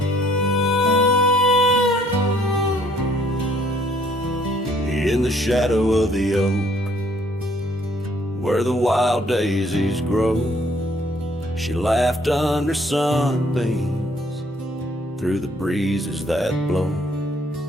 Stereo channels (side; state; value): both; normal; correlation 0.63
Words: In the shadow of the oak, where the wild daisies grow, she laughed under sunbeams through the breezes that blow.